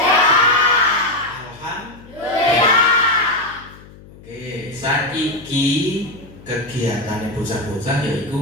Alhamdulillah. Oke, saiki kegiatan bocah-bocah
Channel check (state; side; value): noise; left; hum, 21 dB below the sound